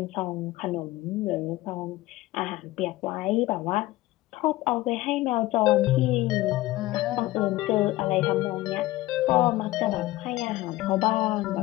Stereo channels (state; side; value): quieter; right; 17.6 dB